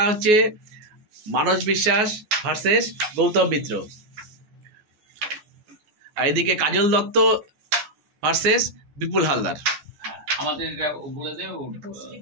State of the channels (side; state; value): left; late; 14 ms